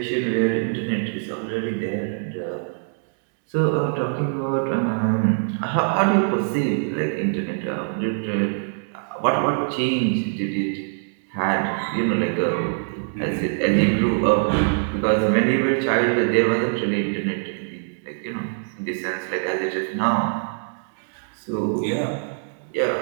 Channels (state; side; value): silent; left; digital silence